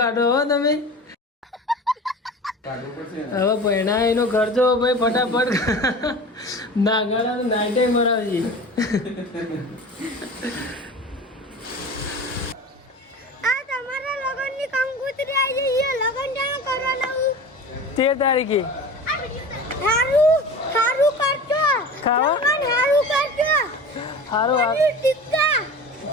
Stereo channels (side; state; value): both; normal; correlation 0.35